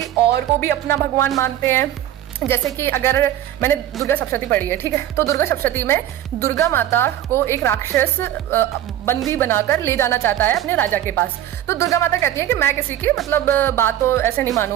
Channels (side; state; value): left; quieter; 12.1 dB